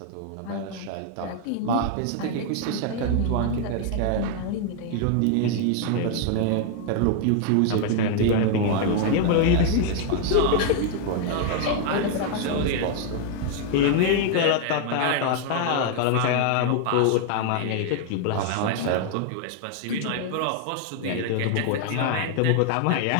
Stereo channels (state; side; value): different; both; correlation 0.00